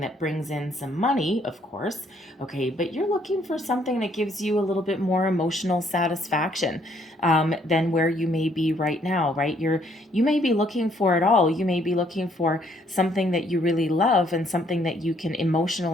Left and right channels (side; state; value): both; normal; correlation 0.67